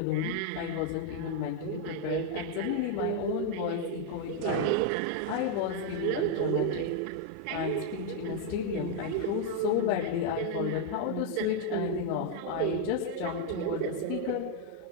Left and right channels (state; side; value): different; both; correlation 0.01